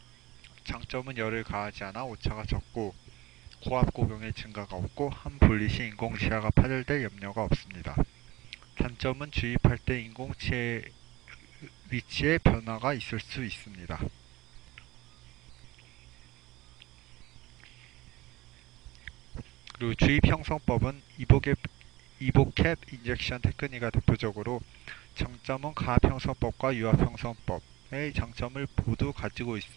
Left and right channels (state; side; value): quieter; left; 19.0 dB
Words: 장점은 열을 가하지 않아 오차가 적고 고압 고경의 증가가 없고 함 분리 시 인공치아가 파절될 염려가 없습니다. 단점은 주입할 때 인공치의 위치에 변화가 있을 수 있습니다. 그리고 주입 형성법은 이보캡 인젝션 테크닉가 대표적으로 장점은 가압 형성법과 유압 형성법의 장점을 모두 가지고